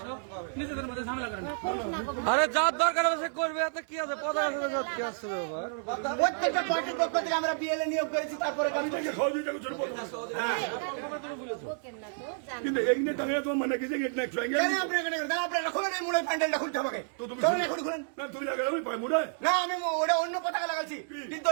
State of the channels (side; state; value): left; silent; digital silence